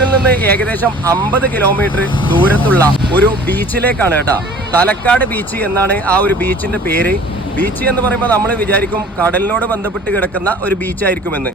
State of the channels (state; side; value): normal; both; correlation 0.47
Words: നിന്ന് ഏകദേശം 50 കിലോമീറ്റർ ദൂരത്തുള്ള ഒരു ബീച്ചിലേക്കാണ് കേട്ടോ. തലക്കാട് ബീച്ച് എന്നാണ് ആ ഒരു ബീച്ചിന്റെ പേര്. ബീച്ച് എന്ന് പറയുമ്പോൾ നമ്മൾ വിചാരിക്കും കടലിനോട് ബന്ധപ്പെട്ട് കിടക്കുന്ന ഒരു ബീച്ചായിരിക്കുമെന്ന്.